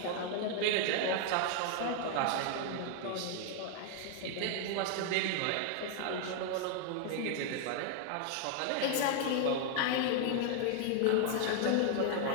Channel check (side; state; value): both; different; correlation 0.00